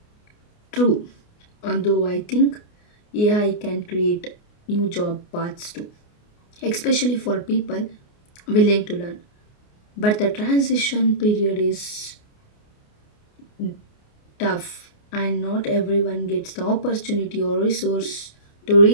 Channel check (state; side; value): late; right; 29 ms